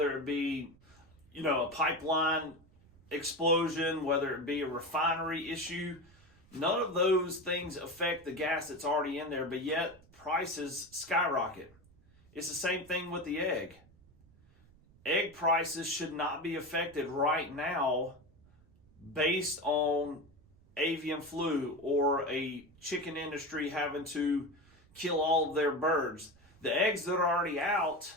it be, a pipeline explosion, whether it be a refinery issue. None of those things affect the gas that's already in there, but yet prices skyrocket. It's the same thing with the egg. Egg prices should not be affected right now based on avian flu or a chicken industry having to kill all of their birds. The eggs that are already out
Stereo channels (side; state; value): right; noise; rumble, 27 dB below the sound